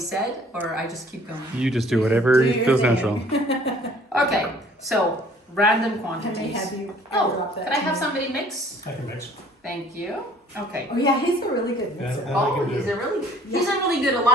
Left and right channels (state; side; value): normal; both; correlation 0.56